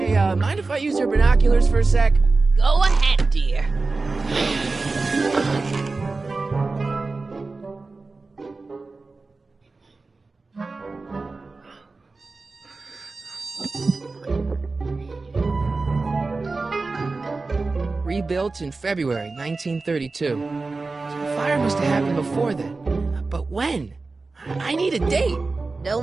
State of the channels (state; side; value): quieter; left; 3.7 dB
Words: mind if I use your binoculars for a sec? Go ahead, dear. Rebuilt in February 1932. So the fire must have happened before then. But when? I need a date.